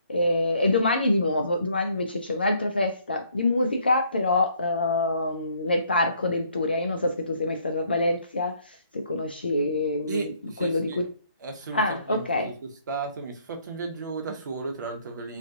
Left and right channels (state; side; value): inverted; both; correlation -0.65